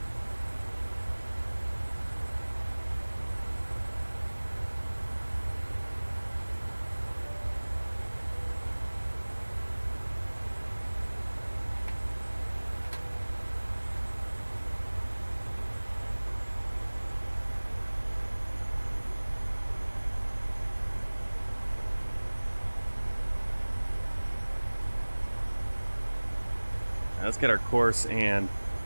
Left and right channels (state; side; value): inverted; both; correlation -1.00